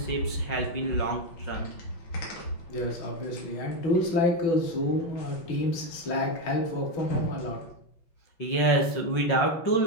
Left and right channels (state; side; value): late; right; 5.6 ms